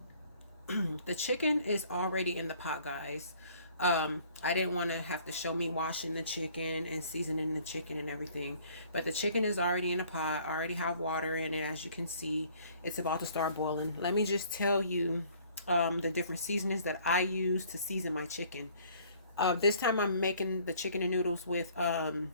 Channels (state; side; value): inverted; both; correlation -0.57